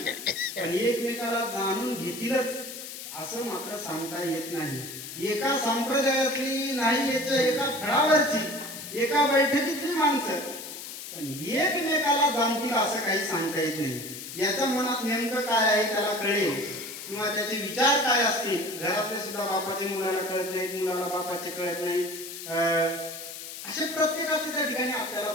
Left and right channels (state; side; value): noise; left; hiss, 10 dB below the sound